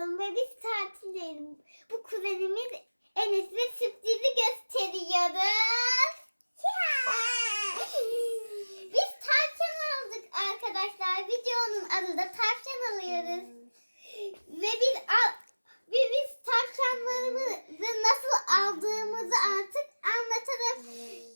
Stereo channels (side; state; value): both; inverted; correlation -1.00